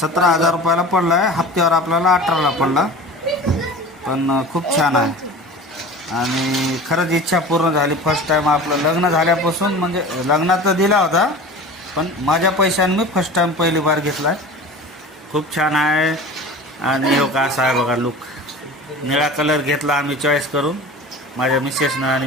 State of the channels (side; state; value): both; normal; correlation 0.37